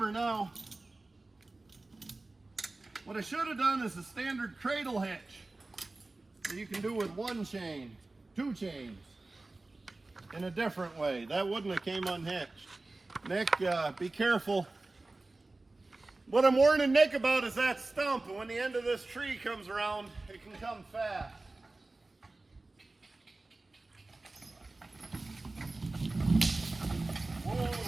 now. What I should have done is a standard cradle hitch that you can do with one chain, 2 chains, in a different way. That wouldn't have came unhitched. Nick, be careful. What I'm warning Nick about is that stump, and when the end of this tree comes around, it can come fast. Whoa.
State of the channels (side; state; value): left; quieter; 3.1 dB